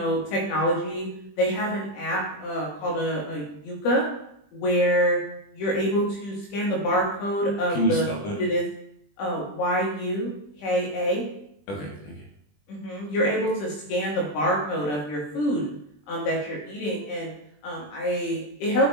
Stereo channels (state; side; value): late; right; 20 ms